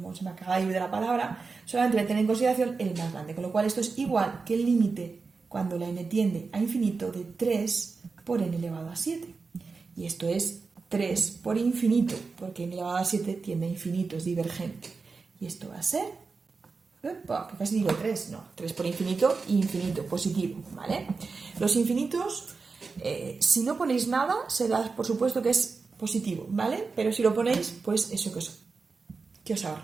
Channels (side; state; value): left; quieter; 4.5 dB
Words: se me acaba de ir de la palabra, solamente me tiene en consideración el más grande, con lo cual esto es igual que el límite cuando la n tiende a infinito de 3 por n elevado a 7. Y esto es 3 por infinito, porque n elevado a 7 tiende a infinito, es divergente. Y esto va a ser, que casi digo 3, no, 3 por infinito, infinito, positivo, ¿vale? Los infinitos, si no ponéis nada, se da por supuesto que es positivo, ¿vale? Pero si lo ponéis, pues eso que os